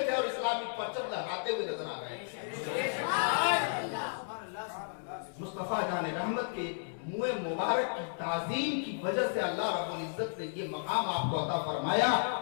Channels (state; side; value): silent; right; 55 dB below the other